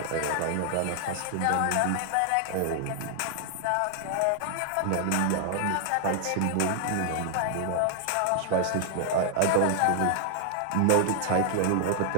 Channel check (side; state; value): both; different; correlation 0.00